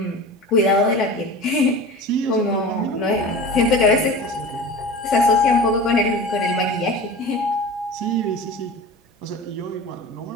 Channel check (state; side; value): normal; both; correlation 0.35